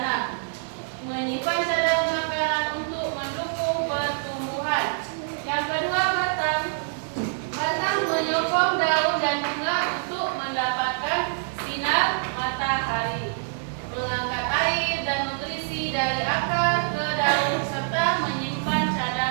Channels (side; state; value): left; silent; 61 dB below the other